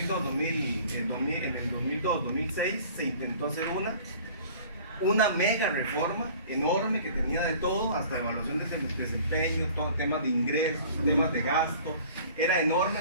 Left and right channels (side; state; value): both; inverted; correlation -0.48